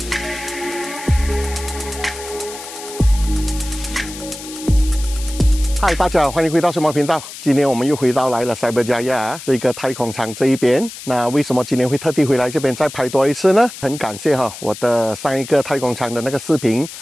嗨，大家好，欢迎回到什么频道？今天我们又回到来了塞伯加亚这个太空舱这一边。那为什么今天会特地回来这边再拍多一次呢？很感谢我的上一个太空舱的那个视频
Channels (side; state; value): left; noise; hiss, 13 dB below the sound